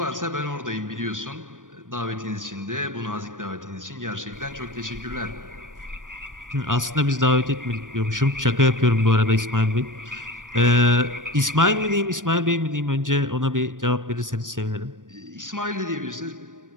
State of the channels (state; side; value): late; left; 0.88 ms